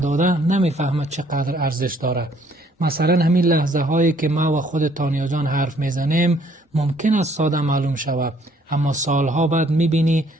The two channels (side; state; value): both; normal; correlation 0.63